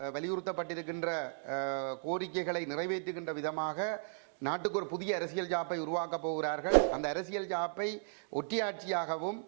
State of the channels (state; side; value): silent; left; digital silence